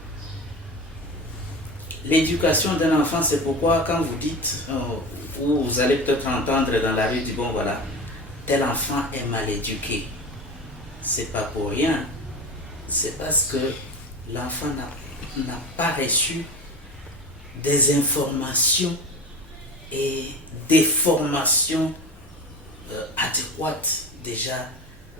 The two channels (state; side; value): normal; both; correlation 0.30